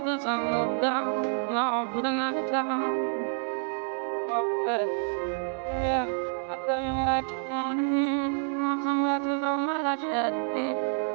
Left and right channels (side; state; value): left; silent; 59 dB below the other